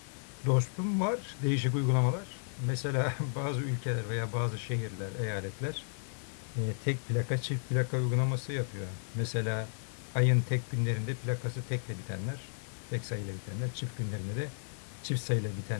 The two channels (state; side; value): silent; right; digital silence